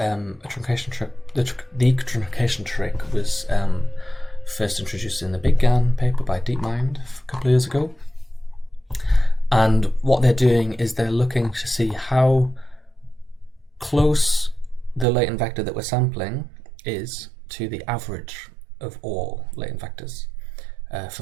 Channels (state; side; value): drops out; left; at 15.1 s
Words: truncation trick. The truncation trick was first introduced in the Big GAN paper by DeepMind a couple of years ago. And what they're doing is they're looking to see how close the latent vector that we're sampling is to the average of all latent vectors